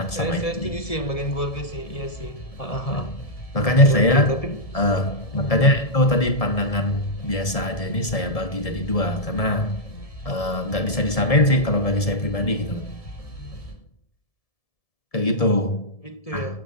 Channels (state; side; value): late; right; 1.7 ms